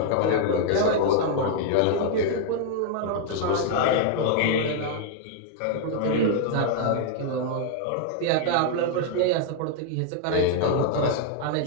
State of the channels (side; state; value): both; different; correlation 0.00